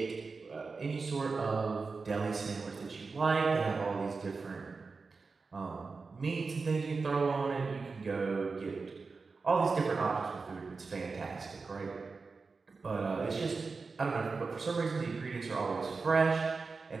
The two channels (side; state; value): left; quieter; 4.4 dB